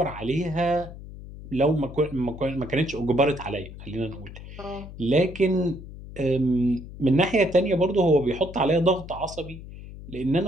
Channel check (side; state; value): left; noise; hum, 14 dB below the sound